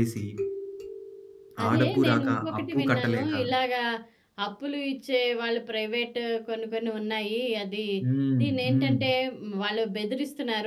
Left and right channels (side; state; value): both; identical; correlation 1.00